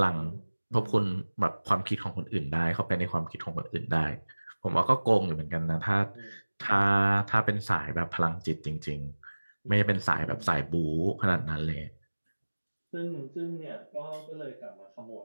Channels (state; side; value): inverted; both; correlation -1.00